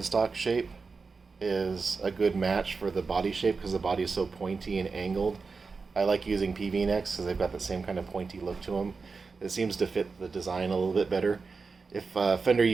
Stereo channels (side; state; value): left; quieter; 4.6 dB